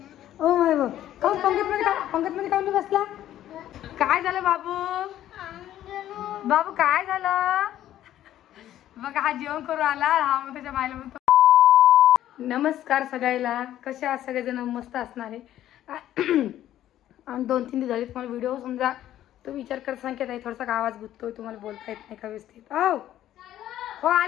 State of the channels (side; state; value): right; quieter; 12.4 dB